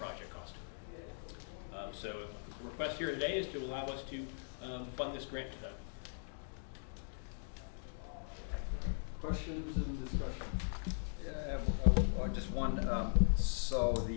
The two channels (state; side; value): silent; right; digital silence